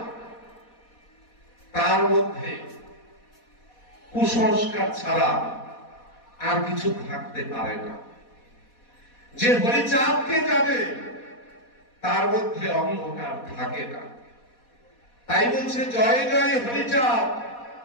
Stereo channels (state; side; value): late; right; 4.2 ms